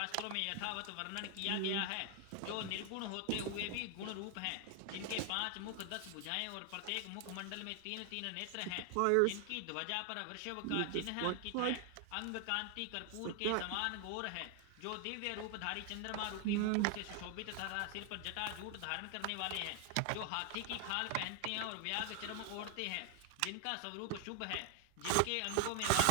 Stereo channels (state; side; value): different; both; correlation 0.00